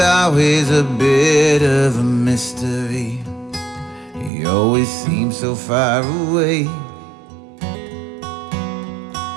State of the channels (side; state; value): left; drops out; at 4.3 s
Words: a bit of a mystery. He always seemed so far away.